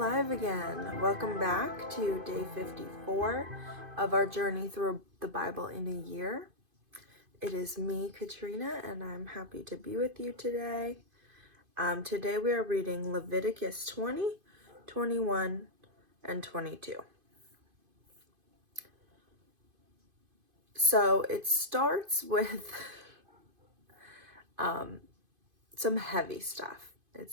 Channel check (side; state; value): left; late; 2.5 ms